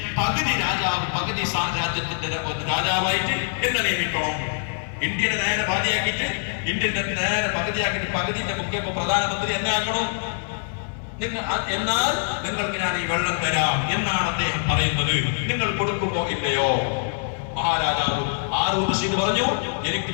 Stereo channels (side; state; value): right; silent; 63 dB below the other